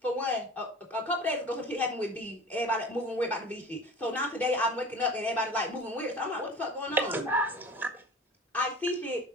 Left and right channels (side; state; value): both; normal; correlation 0.38